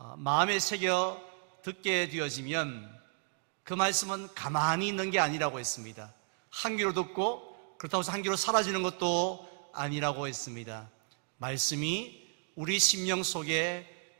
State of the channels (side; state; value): left; silent; 55 dB below the other